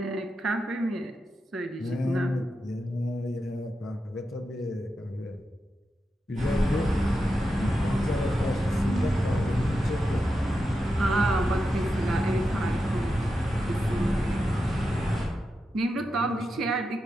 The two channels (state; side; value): normal; both; correlation 0.88